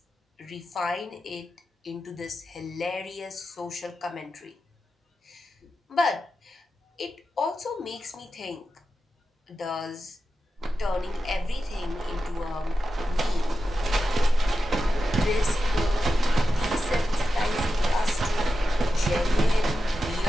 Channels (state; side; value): normal; both; correlation 0.91